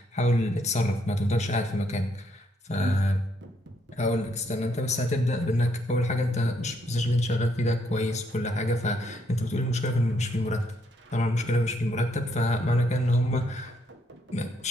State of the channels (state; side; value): normal; both; correlation 0.73